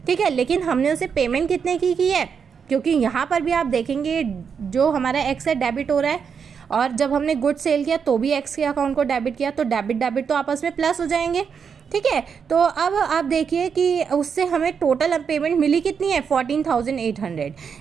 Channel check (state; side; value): quieter; left; 6.6 dB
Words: ठीक है, लेकिन हमने उसे पेमेंट कितने की है, क्योंकि यहाँ पर भी आप देखेंगे जो हमारा एक्स है डेबिट हो रहा है, और जब हमने गुड सेल किया तो भी एक्स के अकाउंट को डेबिट किया, तो डेबिट तो आपस में प्लस हो जाएंगे। ठीक है, तो अब आप देखिए कि उससे हमें टोटल पेमेंट मिली कितनी है, 14,800।